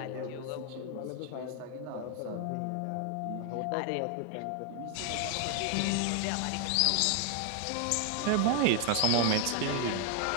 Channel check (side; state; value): both; different; correlation 0.01